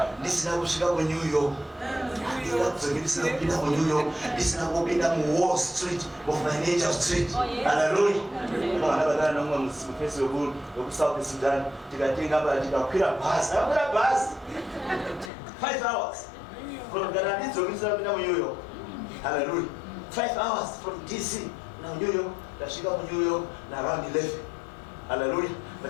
Ndisina kusvika ku New York. Ndikadzoki ndisina kupinda ku New York. Ndisina kupinda mu Wall Street, mu Financial Street. Hallelujah. Ndakabata nomwe mufesi weku South Sudan. Tikatenga pa tikakwira bus. Ndakwira bus 5 hours. From Ghana ndidzoki ndisina kupinda ku New York. Hallelujah. 5 hours from DC. Now New York, ndasvika ku New York na around 11. Hallelujah.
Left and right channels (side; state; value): right; drops out; at 15.3 s